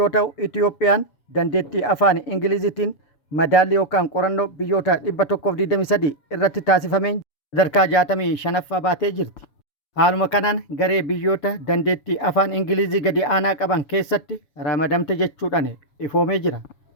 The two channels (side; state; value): right; late; 7.1 ms